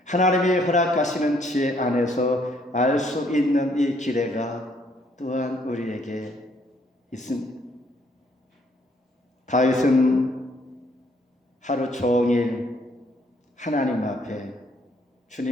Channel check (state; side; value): normal; both; correlation 0.67